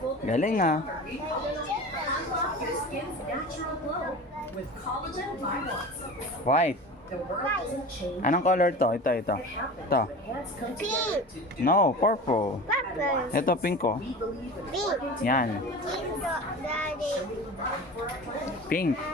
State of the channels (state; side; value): normal; both; correlation 0.34